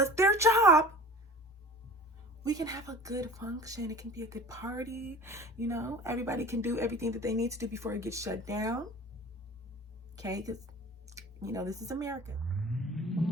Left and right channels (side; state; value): both; normal; correlation 0.42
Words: their job, we can have a good function. It can be a good party, you know. Everybody can do everything that they need to do before it gets shut down. Okay, because, you know, this is America.